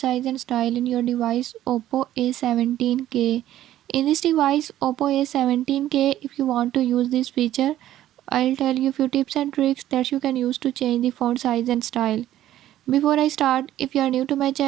and style in your device Oppo A17k. In this device Oppo A17k, if you want to use this feature, I'll tell you few tips and tricks that you can use to change the font size and style. Before I start, if you are new to my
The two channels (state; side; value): quieter; left; 13.1 dB